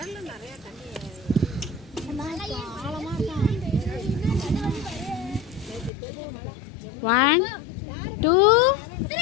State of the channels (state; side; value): drops out; right; at 5.9 s